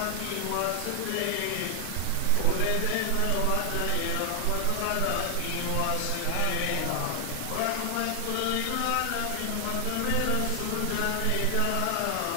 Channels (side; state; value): both; different; correlation 0.00